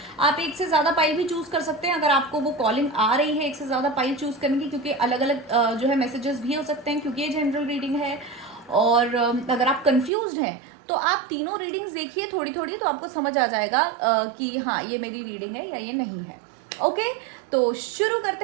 आप एक से ज़्यादा पाइल भी चूज कर सकते हैं अगर आपको वो कॉलिंग आ रही है एक से ज़्यादा पाइल चूज करने की, क्योंकि अलग अलग जो है मैसेजेस भी हो सकते हैं, क्योंकि ये जनरल रीडिंग है। और अगर आप कंफ्यूज्ड हैं तो आप तीनों रीडिंग्स देखिए थोड़ी थोड़ी, तो आपको समझ आ जाएगा कि हाँ ये मेरी रीडिंग है या ये नहीं है। ओके, तो शुरू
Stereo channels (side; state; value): left; drops out; at 10.1 s